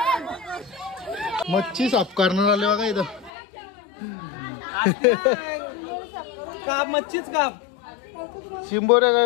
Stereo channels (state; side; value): drops out; right; at 3.3 s